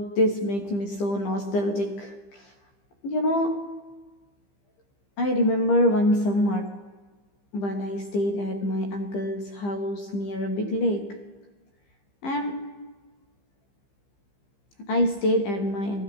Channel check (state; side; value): late; right; 15 ms